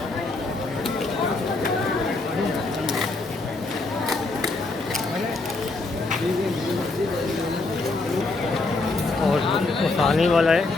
और आने वाला है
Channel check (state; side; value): quieter; right; 3.3 dB